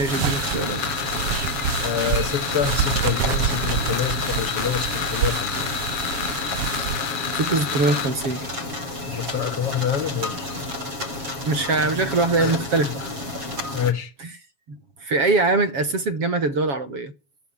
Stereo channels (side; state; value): left; late; 7.3 ms